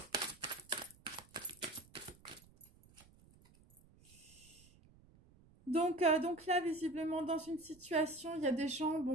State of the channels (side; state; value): right; noise; rumble, 26 dB below the sound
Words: Donc là, visiblement, dans une situation, il y a des gens,